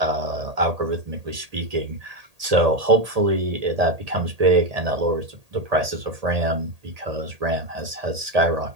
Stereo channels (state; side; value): late; left; 1.8 ms